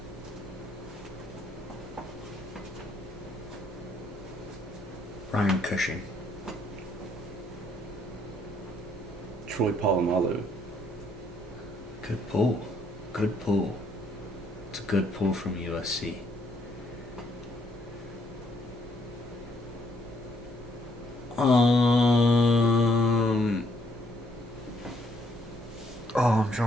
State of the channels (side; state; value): both; normal; correlation 0.69